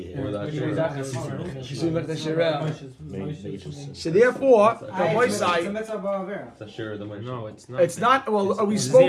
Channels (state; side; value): identical; both; correlation 1.00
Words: So therefore, the boy It's a side. mitzvah ba'avera. It's a share of the money. No, it's not. It's not. Well, we